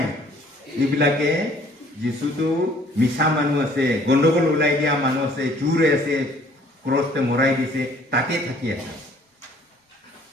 এইবিলাকে যীশুটো মিছা মানুহ আছে গণ্ডগোল ওলাই দিয়া মানুহ আছে চুৰ আছে ক্ৰছতে মৰাই দিছে তাতে থাকি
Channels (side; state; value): both; normal; correlation 0.57